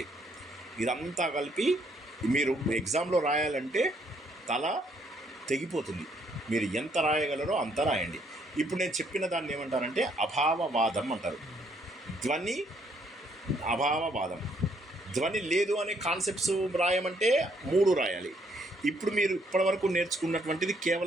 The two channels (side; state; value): both; normal; correlation 0.69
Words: ఇదంతా కలిపి మీరు ఎగ్జామ్లో రాయాలంటే తల తెగిపోతుంది. మీరు ఎంత రాయగలరో అంత రాయండి. ఇప్పుడు నేను చెప్పిన దాన్ని ఏమంటారంటే అభావవాదం అంటారు. ధ్వని అభావవాదం, ధ్వని లేదు అనే కాన్సెప్ట్స్ రాయమంటే 3 రాయాలి. ఇప్పుడు మీరు ఇప్పటివరకు నేర్చుకున్నటువంటిది